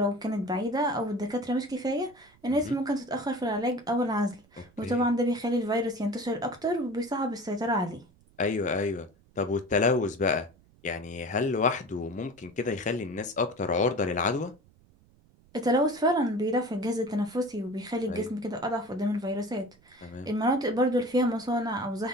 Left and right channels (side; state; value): right; noise; rumble, 29 dB below the sound